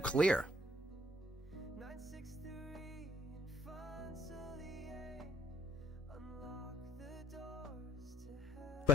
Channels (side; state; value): both; normal; correlation 0.62